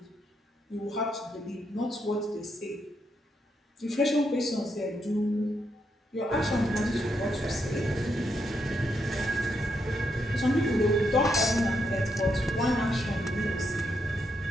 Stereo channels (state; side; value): normal; both; correlation 0.79